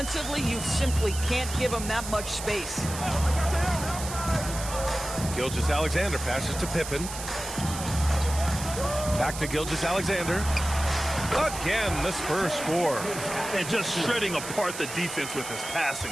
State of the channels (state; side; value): noise; right; hiss, 9 dB below the sound